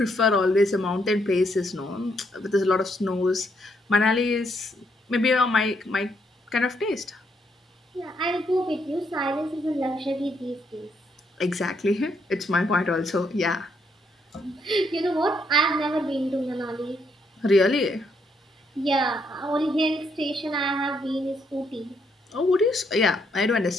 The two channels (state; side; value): normal; both; correlation 0.74